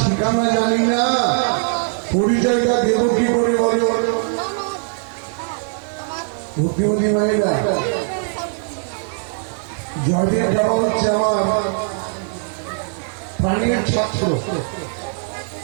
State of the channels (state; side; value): silent; left; digital silence